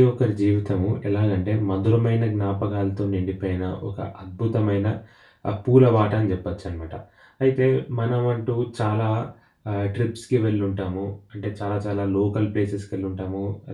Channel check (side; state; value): both; identical; correlation 1.00